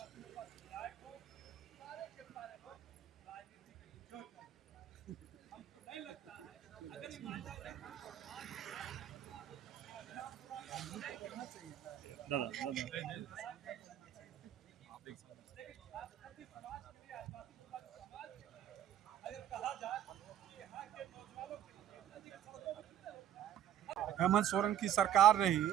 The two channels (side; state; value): left; quieter; 10.9 dB